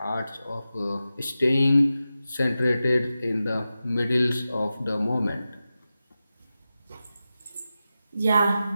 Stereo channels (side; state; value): both; inverted; correlation -0.93